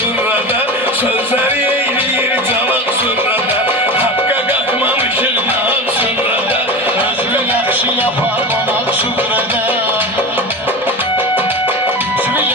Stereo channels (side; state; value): both; normal; correlation 0.27